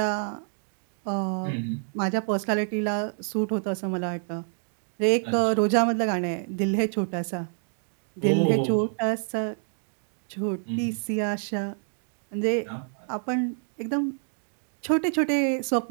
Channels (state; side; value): silent; left; 60 dB below the other